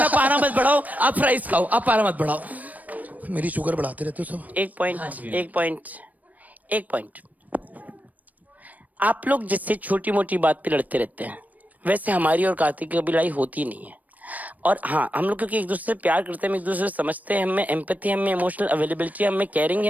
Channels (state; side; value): late; left; 0.076 ms